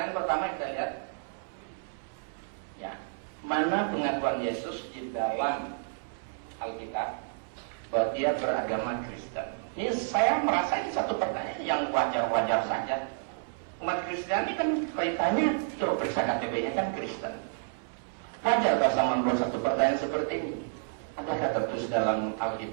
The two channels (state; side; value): silent; left; 58 dB below the other